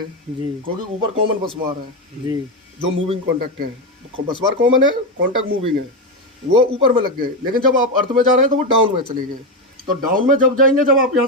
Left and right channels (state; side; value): normal; both; correlation 0.11